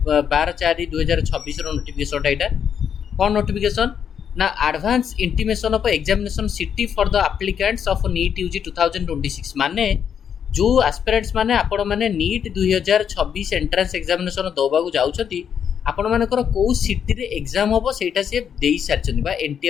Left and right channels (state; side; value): quieter; right; 8.0 dB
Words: नोटिफिकेशन यहाँ कौन नोटिफिकेशन ना advance intimation of examination city for the applicants of NEET UG 2026 माने जो एस्पिरेंट्स माने आपण माने नीट 2026 एंट्रेंस एग्जामिनेशन दबाकू जाउछथि आपण मानकर को सिटी रे एग्जाम होबो सेटा से देई सारछथि बा एनटीए